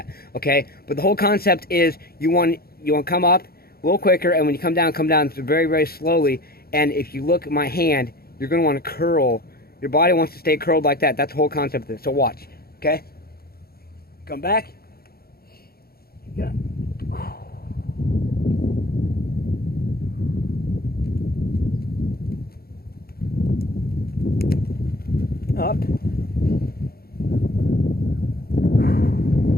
okay? But the whole concept is you want to come up a little quicker, and when you come down very, very slowly. And if you look at my hand, you're going to want to curl. Your body wants to stay curled like that. That's the whole concept of this. So watch, okay? Come back. Yeah. Up.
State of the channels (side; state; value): right; late; 0.44 ms